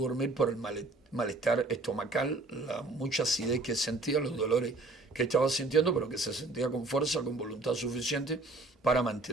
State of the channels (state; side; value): quieter; left; 3.2 dB